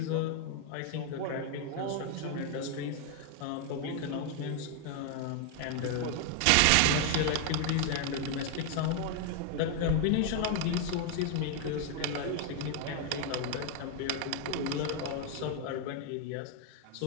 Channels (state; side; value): different; both; correlation 0.01